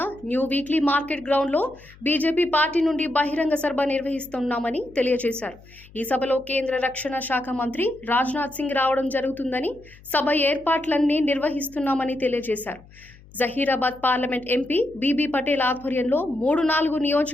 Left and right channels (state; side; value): noise; left; hum, 24 dB below the sound